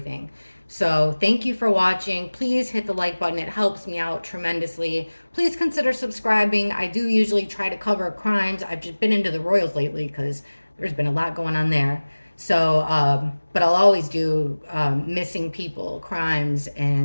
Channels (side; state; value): both; inverted; correlation -1.00